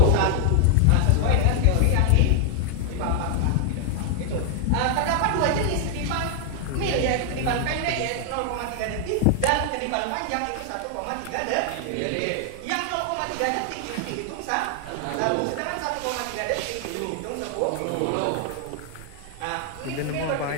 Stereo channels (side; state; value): both; different; correlation 0.00